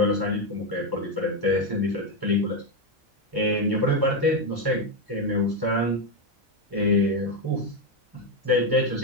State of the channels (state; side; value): normal; both; correlation 0.07